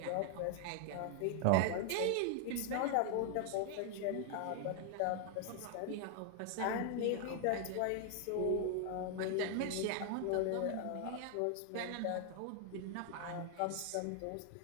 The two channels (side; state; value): both; different; correlation 0.00